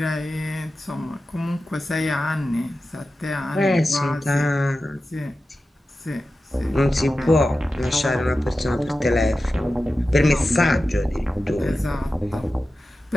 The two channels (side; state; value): both; normal; correlation 0.93